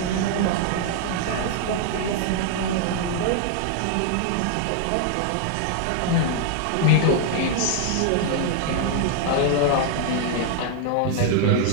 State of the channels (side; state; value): both; different; correlation 0.00